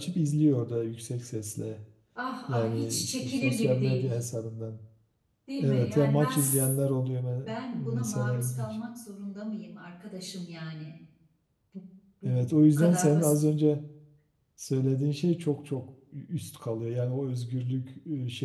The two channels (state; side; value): identical; both; correlation 1.00